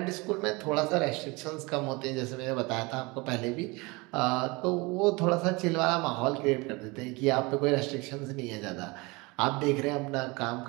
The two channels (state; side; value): quieter; left; 25.4 dB